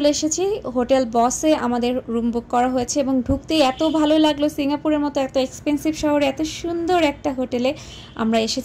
এসেছি। হোটেল বসে আমাদের রুম বুক করা হয়েছে এবং ঢুকতেই এত ভালো লাগলো। সিঙ্গাপুরের মতো এত এক্সপেন্সিভ শহরে এত সুন্দর একটা হোটেলে আমরা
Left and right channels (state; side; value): identical; both; correlation 1.00